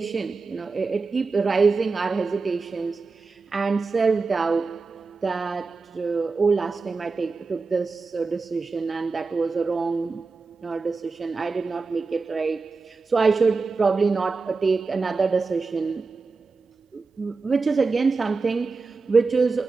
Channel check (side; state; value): left; quieter; 4.2 dB